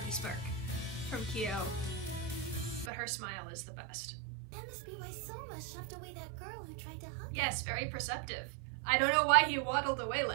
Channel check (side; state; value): left; drops out; at 2.9 s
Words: smirk from Kyo. But her smile is the best. That must be why Soma shoved away that girl who tried to hug Yes, very perceptive. I don't know why he waddled away